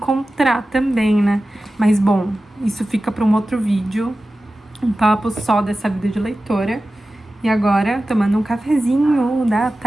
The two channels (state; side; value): normal; both; correlation 0.95